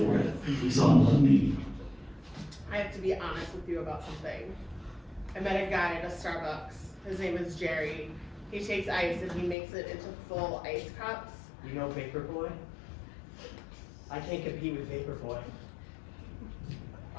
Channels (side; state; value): right; drops out; at 9.6 s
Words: it. He's on one knee. I have to be honest with you about something. I met a guy at a Starbucks. His name is Jerry. He takes ice and he makes it into full ice cups. You know Vapor Boy? I can't compete with Vapor Boy.